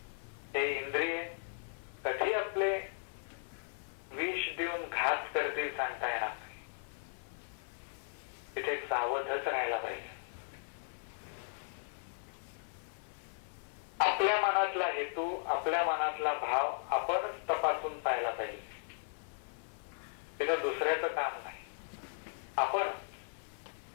हे इंद्रिय कधी आपले विष देऊन घात करतील सांगता येणार नाही. तिथे सावधच राहायला पाहिजे. आपल्या मनातला हेतू, आपल्या मनातला भाव आपणच तपासून पाहायला पाहिजे. तिथं दुसऱ्याचं काम नाही. आपण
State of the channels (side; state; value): right; silent; 53 dB below the other